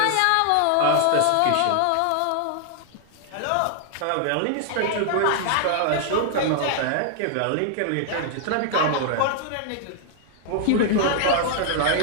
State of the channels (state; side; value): different; both; correlation 0.00